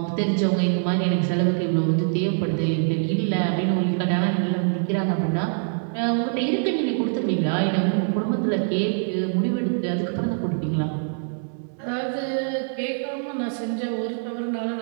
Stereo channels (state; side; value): silent; left; digital silence